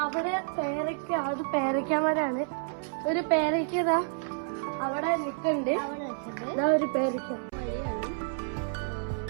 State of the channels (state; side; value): silent; left; 58 dB below the other